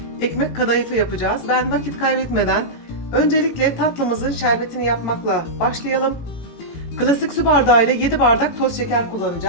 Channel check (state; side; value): late; right; 18 ms